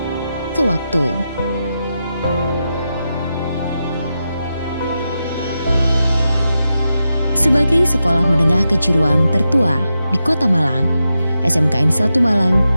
ke waktu. Sebagai sekolah menengah kejuruan tertua di Kota Malang, SMKN 1 Malang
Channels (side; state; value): both; inverted; correlation -0.88